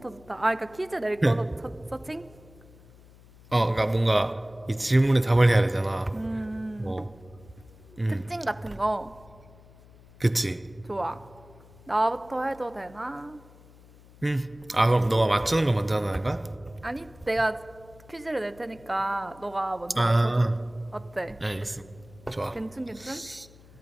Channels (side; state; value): left; noise; hum, 24 dB below the sound